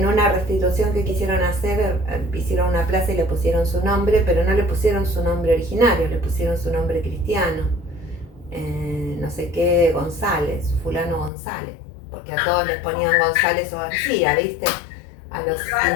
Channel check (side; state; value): right; drops out; at 11.3 s